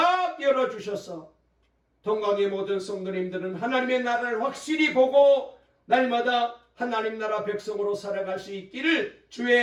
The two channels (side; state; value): both; identical; correlation 1.00